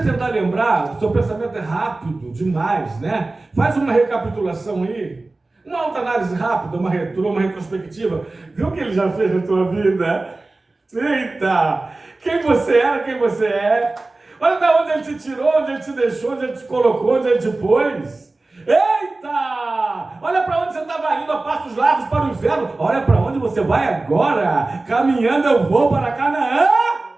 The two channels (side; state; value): left; quieter; 3.2 dB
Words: lembrar, o seu pensamento é rápido demais, né? Faz uma recapitulação aí, uma autoanálise rápida, uma retrospectiva. Viu o que ele já fez na tua vida? Eita! Quem você era, quem você é. Olha de onde ele te tirou, onde ele te deixou, onde ele te colocou, onde ele te pôs. Eita! Olha para onde você estava indo a passos largos para o inferno. Olha para onde você vai agora. Caminhando eu vou para Canaã.